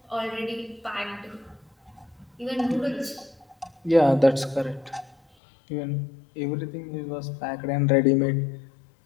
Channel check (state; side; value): drops out; right; at 5.2 s